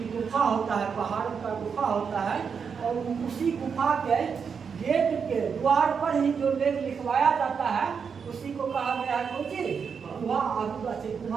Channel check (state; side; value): quieter; left; 6.3 dB